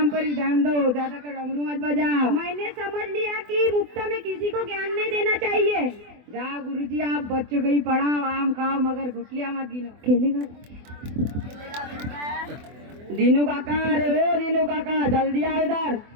पर ही ध्यान दो, ज्यादा कर डमरू मत बजाओ। मैंने समझ लिया कि मुफ्त में किसी को ज्ञान नहीं देना चाहिए। जाओ गुरुजी, आप बच्चों को ही पढ़ाओ, आम खाओ, मगर गुटलियां मत गिनो। खेलेगा दीनू काका, अरे ओ दीनू काका, जल्दी आओ इधर।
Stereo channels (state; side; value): late; left; 24 ms